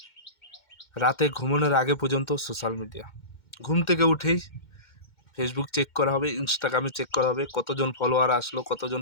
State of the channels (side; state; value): right; late; 2.1 ms